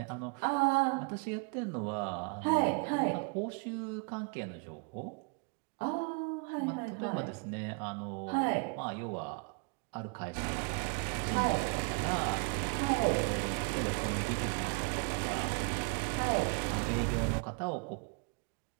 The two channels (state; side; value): quieter; left; 35.6 dB